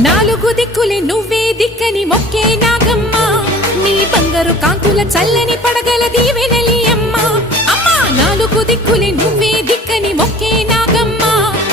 నాలుగు దిక్కులే నువ్వే దిక్కని మొక్కే నాగమ్మ నీ బంగారు కాంతుల చల్లని పడగల దీవెనలి అమ్మ అమ్మా నాలుగు దిక్కులే నువ్వే దిక్కని మొక్కే నాగమ్మ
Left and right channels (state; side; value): normal; both; correlation 0.46